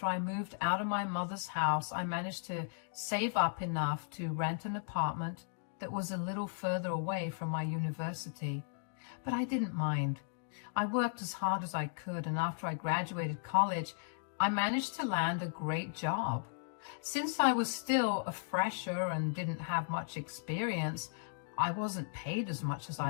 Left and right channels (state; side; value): silent; right; digital silence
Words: I moved out of my mother's house, I managed to save up enough to rent an apartment that was a little further away from my university. But I didn't mind. I worked as hard as I could, and after I graduated college, I managed to land a great job. Since I was still a fresher and didn't have much experience, I wasn't paid as much as